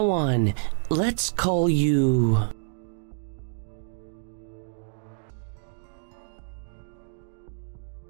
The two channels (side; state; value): left; silent; digital silence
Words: on, let's call you...